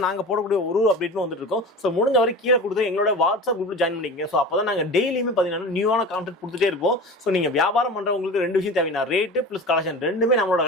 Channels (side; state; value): both; normal; correlation 0.33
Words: நாங்க போடக்கூடிய ஒரு அப்டேட்டும் வந்துட்டு இருக்கோம். ஸோ முடிஞ்ச வரை கீழே கொடுத்து எங்களோட வாட்ஸ்அப் குரூப்ல ஜாயின் பண்ணிக்கங்க. ஸோ அப்பதான் நாங்க டெய்லியுமே பாத்தீங்கன்னா நியூவான கான்டென்ட் கொடுத்துட்டே இருப்போம். ஸோ நீங்க வியாபாரம் பண்றவங்களுக்கு 2 விஷயம் தேவைன்னா ரேட்டு பிளஸ் கலெக்ஷன் ரெண்டுமே நம்மளோட